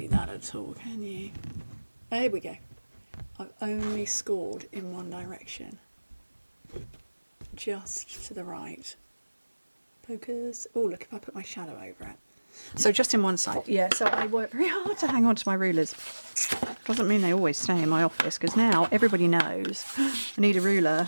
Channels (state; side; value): inverted; both; correlation -1.00